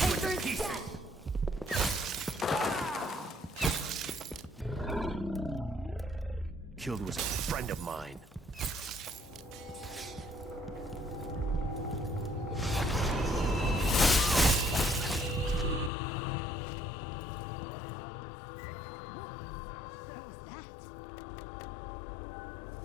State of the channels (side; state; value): right; drops out; at 15.9 s